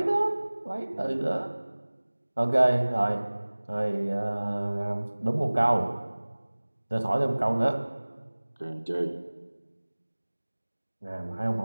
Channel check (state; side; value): inverted; both; correlation -1.00